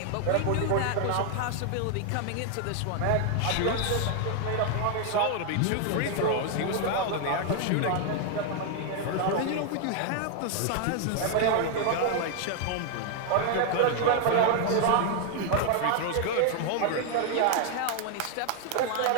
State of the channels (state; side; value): different; both; correlation 0.00